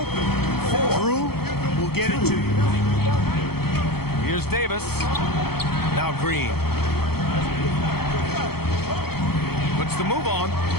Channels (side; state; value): right; late; 0.96 ms